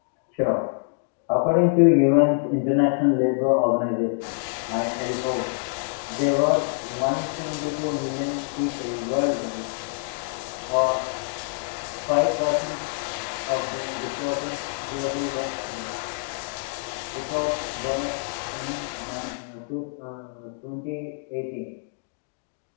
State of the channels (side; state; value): right; silent; digital silence